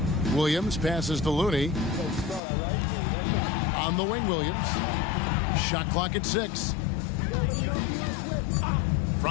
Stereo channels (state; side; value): drops out; right; at 2.4 s